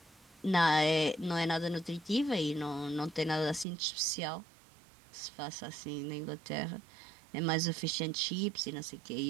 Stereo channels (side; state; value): left; drops out; at 3.7 s